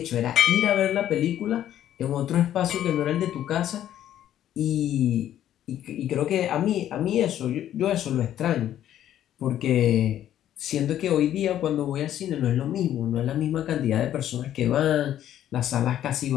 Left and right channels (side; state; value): right; quieter; 11.5 dB